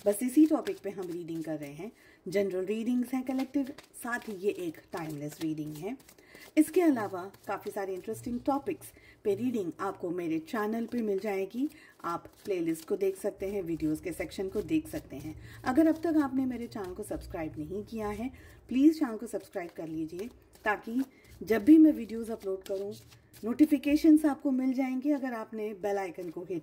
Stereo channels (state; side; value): identical; both; correlation 1.00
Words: बस इसी टॉपिक पे हम रीडिंग कर रहे हैं। जनरल रीडिंग्स हैं, कलेक्टिव, साथ ही ये एक टाइमलेस रीडिंग है। इसके अलावा काफ़ी सारे इंटरेस्टिंग टॉपिक्स पे रीडिंग आपको मेरे चैनल पे मिल जाएगी। आप प्लेलिस्ट को देख सकते हैं, वीडियोस के सेक्शन को देख सकते हैं। अगर अब तक आपने मेरे चैनल को सब्सक्राइब नहीं किया है, प्लीज़ चैनल को सब्सक्राइब कर लीजिए, ताकि जब भी मैं वीडियोस अपलोड करूं नोटिफिकेशंस आपको मिल जाएंगे अगर आपने बेल आइकन को